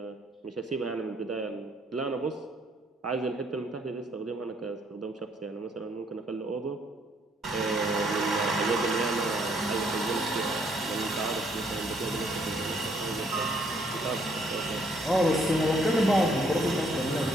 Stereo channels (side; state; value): both; normal; correlation 0.68